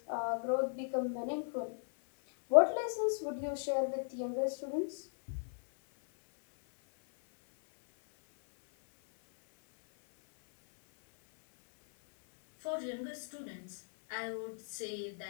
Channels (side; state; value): right; silent; 54 dB below the other